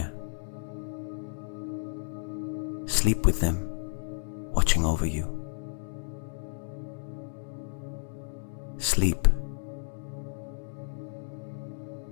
Sleep with them, watching over you. Sleep,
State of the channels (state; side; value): silent; right; 57 dB below the other